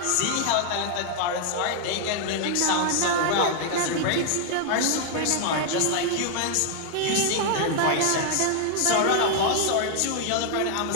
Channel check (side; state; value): both; different; correlation 0.00